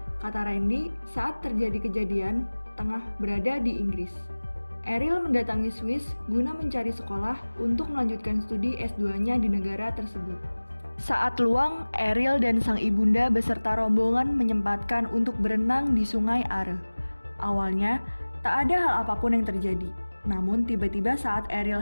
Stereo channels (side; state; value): both; inverted; correlation -1.00